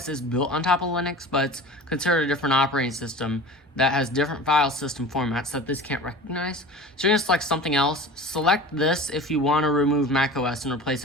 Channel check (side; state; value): both; normal; correlation 0.37